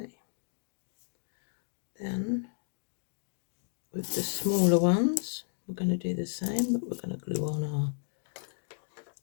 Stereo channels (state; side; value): silent; right; digital silence